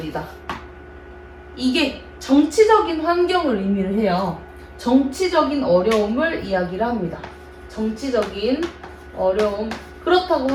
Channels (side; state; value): both; identical; correlation 1.00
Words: 이게 정치적인 환경을 의미를 해요. 정치적인 어려움을 이야기를 합니다. 정치적인 어려움. 그렇다고